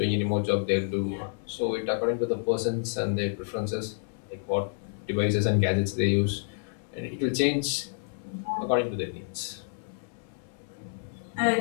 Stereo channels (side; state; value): right; silent; 59 dB below the other